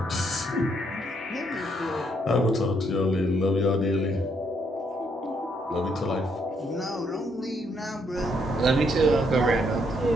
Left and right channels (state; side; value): normal; both; correlation 0.73